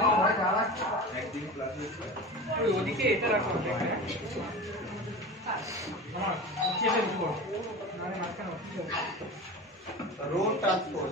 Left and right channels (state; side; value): normal; both; correlation 0.31